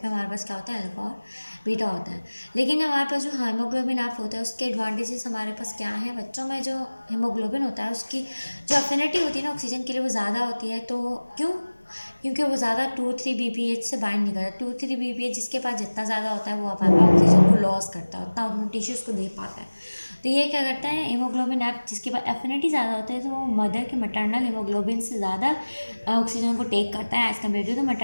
में हमारे पास क्या होता है, अल्फा और बीटा होता है। लेकिन हमारे पास जो हीमोग्लोबिन एफ होता है उसके एडवांटेजेस हमारे पास क्या है, बच्चों में जो हीमोग्लोबिन होता है उसकी जो अफिनिटी होती है ना ऑक्सीजन के लिए वो ज़्यादा होती है। तो क्यों? क्योंकि वो ज़्यादा 2,3-BPH से बाइंड नहीं करता। 2,3-BPH जिसके पास जितना ज़्यादा होता है वो अपना ऑक्सीजन को लॉस करता है, उतना अपने टिश्यूज़ को दे पाता है। तो ये क्या करता है, हीमोग्लोबिन एफ जिसके पास एफिनिटी ज़्यादा होता है तो वो मदर के मटर्नल हीमोग्लोबिन से ज़्यादा ऑक्सीजन को टेक करता है as compare to the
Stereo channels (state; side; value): inverted; both; correlation -1.00